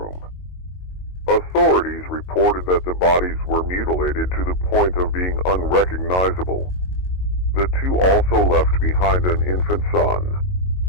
Authorities reported that the bodies were mutilated to the point of being unrecognizable. The two also left behind an infant son.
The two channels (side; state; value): right; late; 22 ms